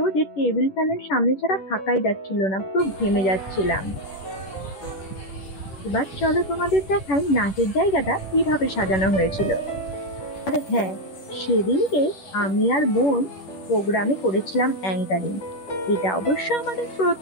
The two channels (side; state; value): right; late; 10 ms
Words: যে টেবিল ফ্যানের সামনে ছাড়া থাকাই যাচ্ছিল না, পুরো ঘেমে যাচ্ছিলাম। এবার চলো তোমাদের দেখাই নাচের জায়গাটা কিভাবে সাজানো হয়েছিল। আর হ্যাঁ, সেদিনকে আমি আর বোন প্রোগ্রামে করেছিলাম অ্যাঙ্কারিং। এটা অবশ্য আমাদের